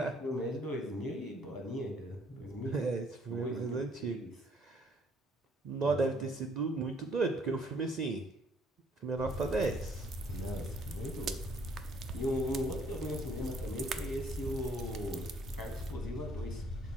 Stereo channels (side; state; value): both; normal; correlation 0.63